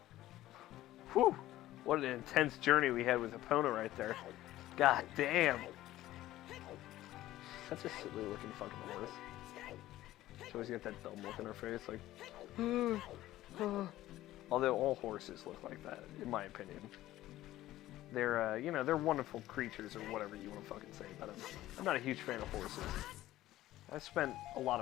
Whew! What an intense journey we had with Epona right there. God damn! Such a silly looking fucking horse. She always got that dumb look in her face, like, although all horses look like that, in my opinion. They're, you know, they're wonderful creatures, or whatever you want to fucking say about them. I'm not a huge fan of horses. I've spent a lot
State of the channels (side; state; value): right; quieter; 15.1 dB